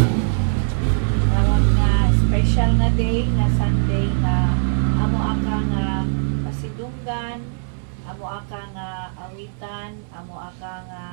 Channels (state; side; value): silent; left; 65 dB below the other